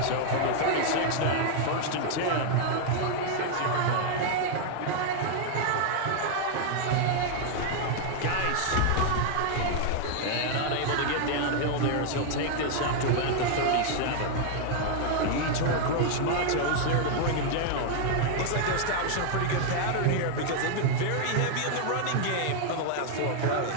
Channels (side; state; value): both; different; correlation 0.00